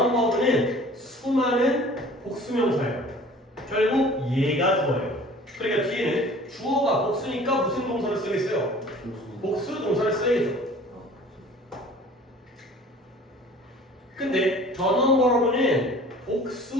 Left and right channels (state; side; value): normal; both; correlation 0.47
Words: 수많은 복수명사예요. 결국 얘가 주어예요. 그러니까 뒤에는 주어가 복수니까 무슨 동사를 쓰겠어요? 복수 동사를 써야겠죠. 근데 the number of는